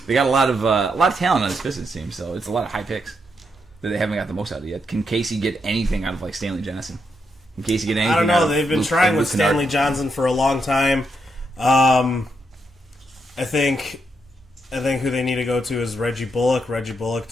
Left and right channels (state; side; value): normal; both; correlation 0.80